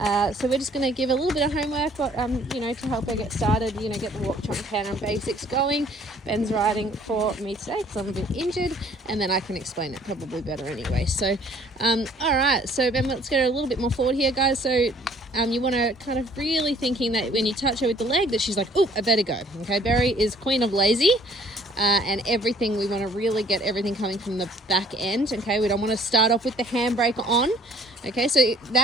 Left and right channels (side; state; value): both; normal; correlation 0.57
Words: So we're just going to give a little bit of homework, but to help her get started, get the walk, trot, canter and basics going. Ben's riding for me today because I'm a bit injured, and then I can explain it probably better anyway. So, all right. So Ben, let's go a little bit more forward here, guys. So you want to kind of really thinking that when you touch her with the leg, that she's like, oh, I better go. Okay, Berry is queen of lazy. And everything, we want to really get everything coming from the back end. Okay, we don't want to start off with the handbrake on. Okay, so